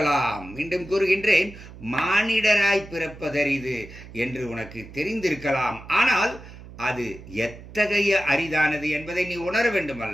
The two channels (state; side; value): noise; right; hum, 16 dB below the sound